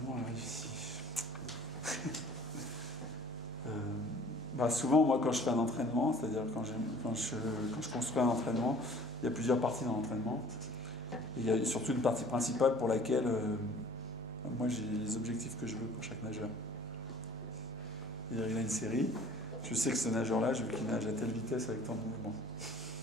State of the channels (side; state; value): both; normal; correlation 0.50